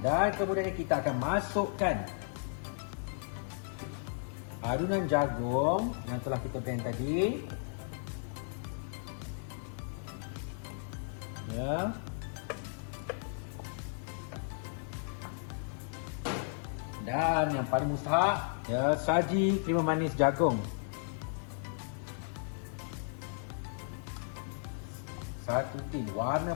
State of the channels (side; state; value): right; silent; digital silence